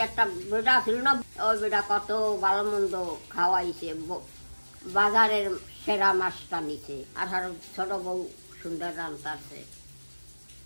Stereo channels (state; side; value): inverted; both; correlation -1.00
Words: একটা বেটা ছিল না, ওই বেটা কত ভালো মন্দ খাওয়াইছে, বাজারের সেরা মাছটা নিছে, আর ছোট বউ সুন্দর রান্তাছে,